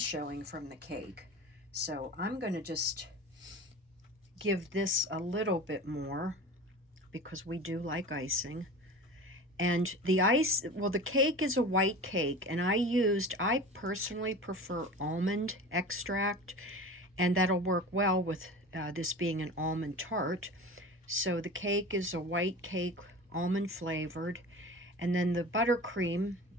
showing from the cake. So I'm going to just give this a little bit more because we do like icing. And the cake is a white cake, and I personally prefer almond extract, and that'll work well with this being an almond tart. So the cake is a white cake, almond flavored, and then the buttercream,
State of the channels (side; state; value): both; normal; correlation 0.34